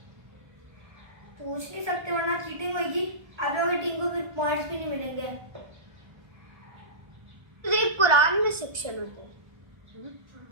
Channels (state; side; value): late; left; 1.3 ms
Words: पूछ नहीं सकते वरना चीटिंग होगी। आप लोगों की टीम को फिर पॉइंट्स भी नहीं मिलेंगे। सिर्फ कुरान में सेक्शन होता है।